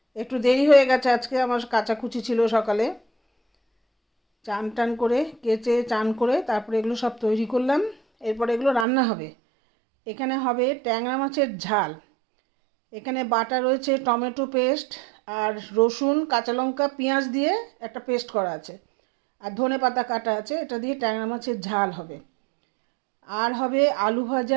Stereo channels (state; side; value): drops out; left; at 8.8 s